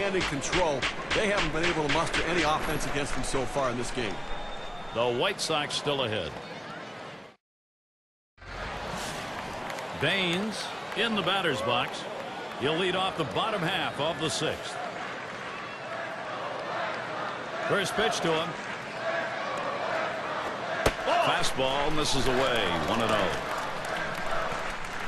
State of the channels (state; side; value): identical; both; correlation 1.00